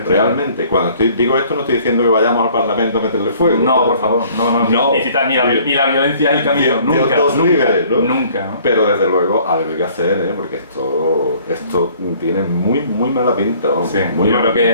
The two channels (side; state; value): both; inverted; correlation -0.56